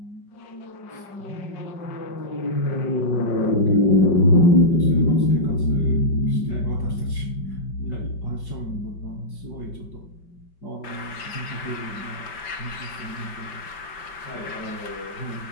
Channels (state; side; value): late; right; 5.2 ms